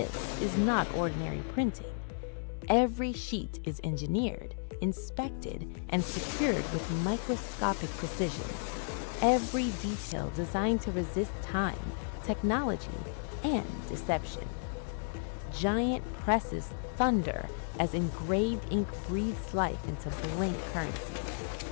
is not ordinary printing. Every sheet is engineered, inspected, and secured with microscopic precision. Every detail designed to resist time, technology, and deception. Giant presses thunder as engraved ink breathes life into blank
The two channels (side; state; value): right; silent; 55 dB below the other